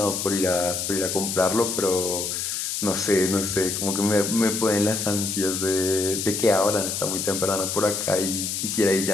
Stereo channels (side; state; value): left; noise; hiss, 2 dB below the sound